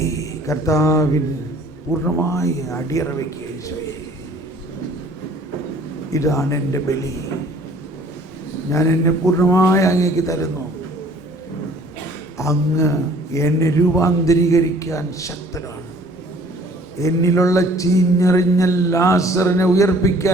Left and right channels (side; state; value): both; normal; correlation 0.53